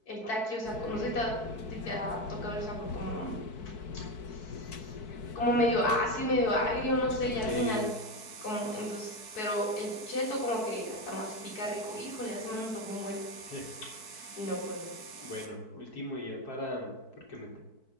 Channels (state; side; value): late; right; 4.6 ms